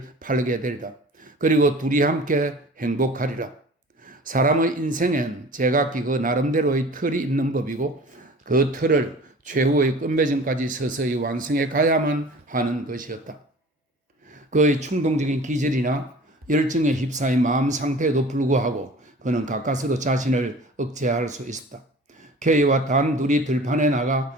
팔게 되리라. 그리고 둘이 함께 행복하리라. 사람의 인생엔 제각기 그 나름대로의 틀이 있는 법이고 그 틀을 최후의 끝맺음까지 서서히 완성해 가야만 하는 것이었다. 그의 충동적인 기질이나 열정에 휩싸인 마음 상태에도 불구하고 그는 가까스로 자신을 억제할 수 있었다. K와 단 둘이 들판에 나가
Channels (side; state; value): both; normal; correlation 0.43